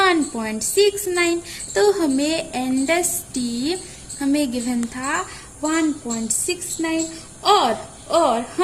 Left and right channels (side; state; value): both; identical; correlation 1.00